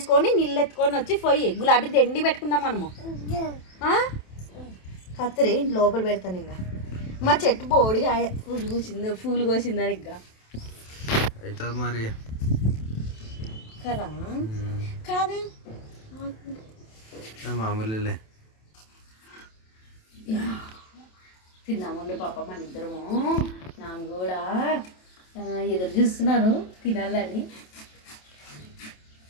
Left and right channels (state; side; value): late; right; 27 ms